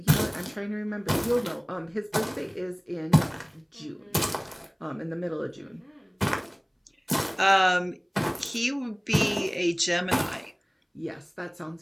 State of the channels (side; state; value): both; identical; correlation 1.00